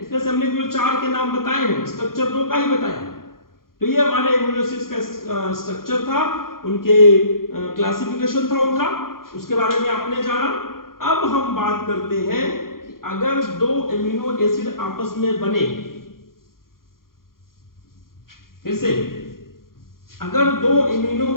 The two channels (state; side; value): late; right; 0.92 ms